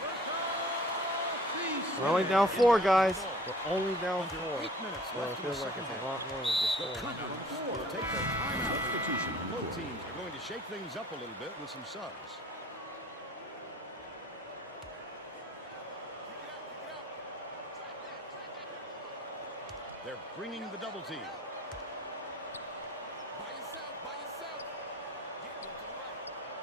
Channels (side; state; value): both; normal; correlation 0.50